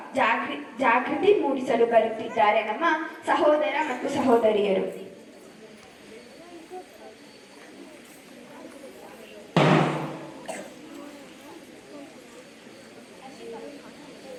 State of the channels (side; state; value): both; identical; correlation 1.00